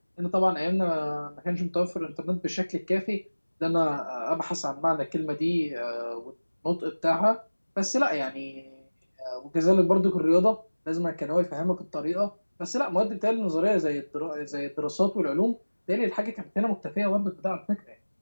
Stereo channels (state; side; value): inverted; both; correlation -1.00